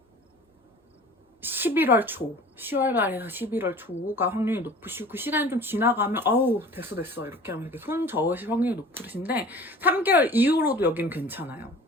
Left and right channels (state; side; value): normal; both; correlation 0.44